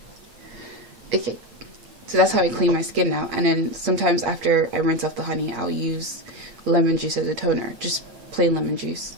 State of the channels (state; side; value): late; left; 8.5 ms